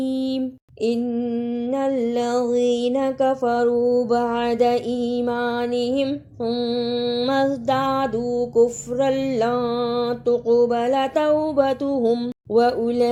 ان الذین کفروا بعد ایمانہم ثم ازدادوا کفرا لن تقبل توبتہم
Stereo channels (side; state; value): both; identical; correlation 1.00